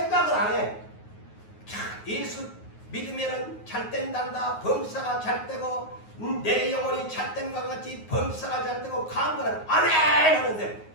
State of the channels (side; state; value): right; late; 9.4 ms